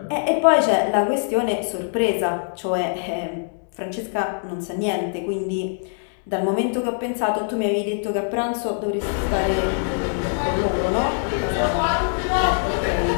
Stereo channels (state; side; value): silent; right; 64 dB below the other